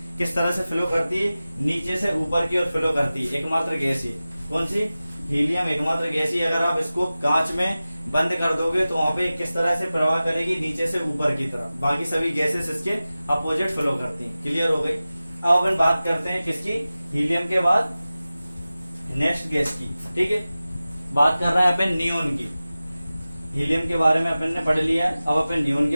किस तरह से फ्लो करती है, नीचे से ऊपर की ओर फ्लो करती है। एकमात्र गैस ये कौन सी, हीलियम एकमात्र गैस ही। अगर आप इसको कांच में बंद कर दोगे तो वहां पे किस तरह से प्रवाह करेगी, नीचे से ऊपर की तरफ। बाकी सभी गैसेस इसके अपोजिट फ्लो करती हैं। क्लियर हो गई। अब अपन बात करते हैं किसकी, हीलियम के बाद नेक्स्ट गैस की। ठीक है, बात कर रहे हैं अपन नियोन की। हीलियम के बारे में अपन ने पढ़ लिया, अब अपन नियोन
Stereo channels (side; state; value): both; inverted; correlation -0.96